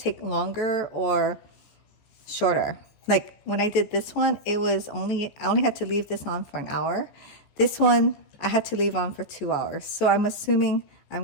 longer or shorter. Like when I did this one, I only had to leave this on for an hour. This one I had to leave on for 2 hours, so I'm assuming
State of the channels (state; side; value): late; right; 14 ms